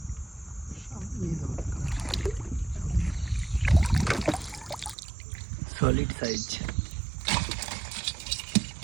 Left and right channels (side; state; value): left; drops out; at 5.0 s